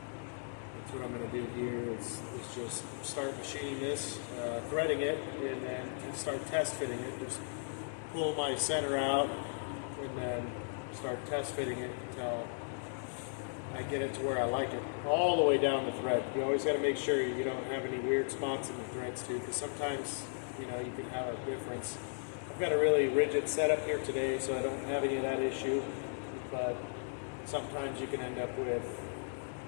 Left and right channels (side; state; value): right; silent; digital silence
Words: That's what I'm going to do here is just start machining this, threading it, and then start test fitting it. Just pull my center out and then start test fitting it until I get it to where I like it, all the way down the thread. You always got to make sure you don't have any weird spots in the threads too, because sometimes you can have a difference. I've got a really rigid setup here today, so I don't have any of that issue, but sometimes you can end up with